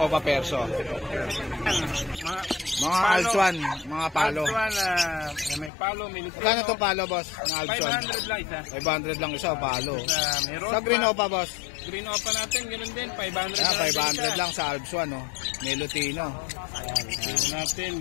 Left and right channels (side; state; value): right; drops out; at 5.7 s